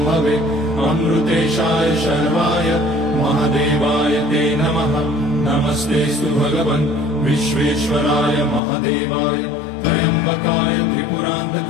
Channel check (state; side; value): drops out; right; at 8.6 s